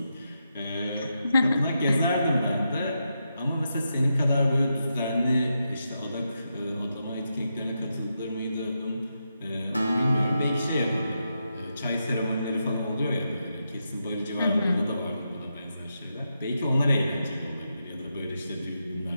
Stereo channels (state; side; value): inverted; both; correlation -0.85